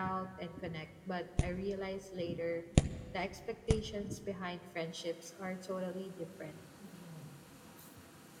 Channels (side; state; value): both; identical; correlation 1.00